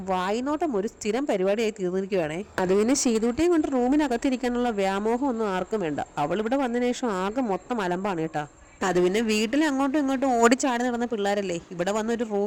വായ്നോട്ടം ഒരു സ്ഥിരം പരിപാടിയായി തീർന്നിരിക്കുകയാണേ. അത് പിന്നെ ചെയ്തോട്ടേയും കൊണ്ട് റൂമിനകത്തിരിക്കാനുള്ള വ്യാമോഹം ഒന്നും ആർക്കും വേണ്ട. അവൾ ഇവിടെ വന്നതിന് ശേഷം ആകെ മൊത്തം അലമ്പാണ് കേട്ടാ. അത് പിന്നെ വീട്ടിൽ അങ്ങോട്ടും ഇങ്ങോട്ടും ഓടിച്ചാടി നടന്ന പിള്ളേരല്ലേ, ഇവിടെ വന്ന് ഒരു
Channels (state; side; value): identical; both; correlation 1.00